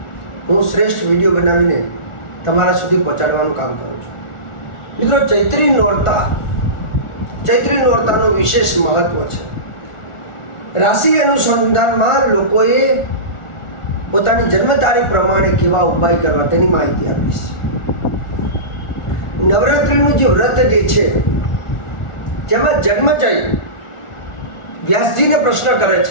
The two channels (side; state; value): right; late; 1.4 ms